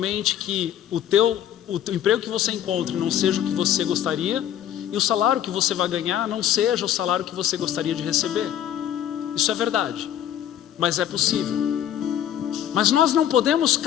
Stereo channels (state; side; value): quieter; right; 10.7 dB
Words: que o teu o emprego que você encontre não seja o que você gostaria, e o salário que você vai ganhar não seja o salário que você gostaria de receber. Isso é verdade, mas é possível. Mas nós não podemos